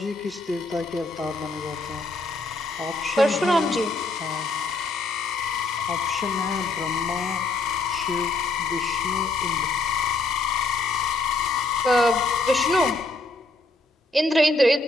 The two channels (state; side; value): quieter; right; 3.1 dB